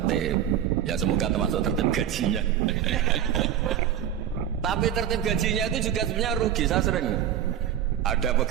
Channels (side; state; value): left; quieter; 10.1 dB